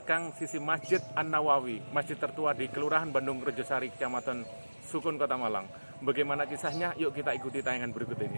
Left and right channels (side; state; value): both; inverted; correlation -1.00